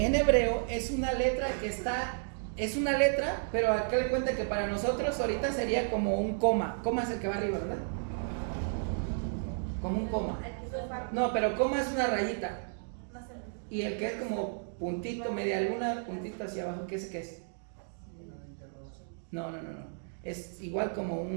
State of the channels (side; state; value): left; silent; digital silence